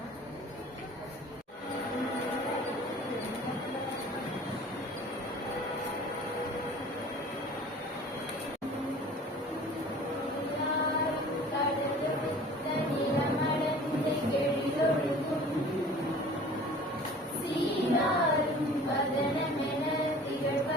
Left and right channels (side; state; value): both; normal; correlation 0.45